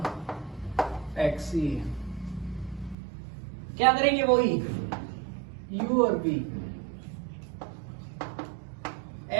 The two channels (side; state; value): left; drops out; at 3.0 s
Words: x, क्या करेंगे वही u और v